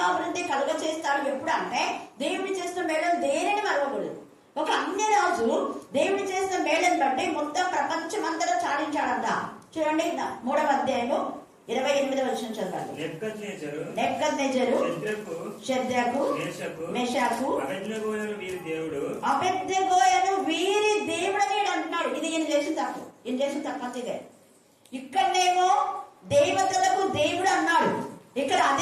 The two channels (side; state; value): both; identical; correlation 1.00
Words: కలుగ చేస్తాడు. ఎప్పుడు అంటే దేవుడు చేసిన మేళను దేనిని మరవకూడదు. ఒక అన్య రాజు దేవుడు చేసిన మేళను బట్టి మొత్తం ప్రపంచం అంతటా చాటించాడంట. చూడండి 3వ అధ్యాయము 28వ వచనం చదవండి. నెబుకద్నెజరు, షద్రకు, మెషాకు, అబేద్నెగోయను వీరి దేవుడని అంటున్నాడు. ఇది ఈయన చేసిన తప్పు. ఈయన చేసిన తప్పు అంత ఇదే. ఇక్కడనేమో దేవతలకు దేవుడు అన్నాడు, ఇక్కడ